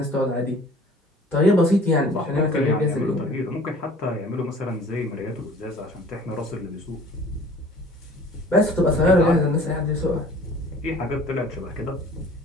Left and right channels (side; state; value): both; normal; correlation 0.49